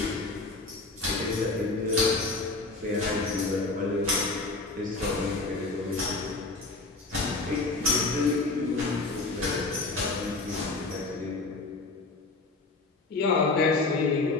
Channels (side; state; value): right; quieter; 3.4 dB